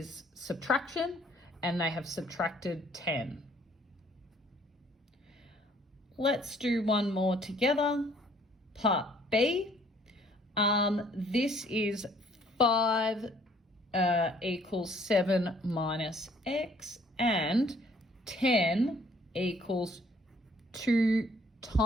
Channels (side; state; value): both; normal; correlation 0.61